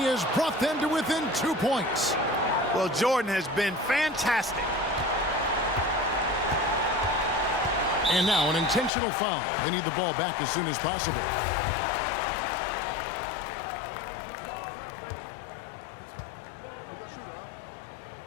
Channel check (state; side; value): drops out; right; at 8.9 s